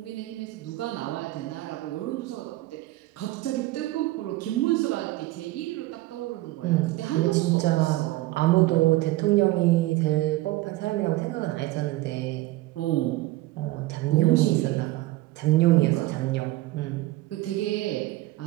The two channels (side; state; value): left; quieter; 17.9 dB